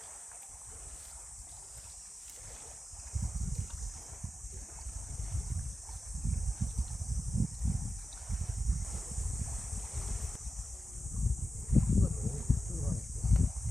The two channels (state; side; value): normal; both; correlation 0.92